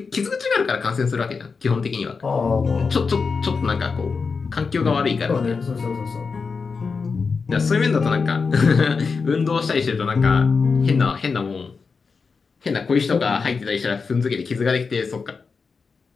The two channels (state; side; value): quieter; right; 5.0 dB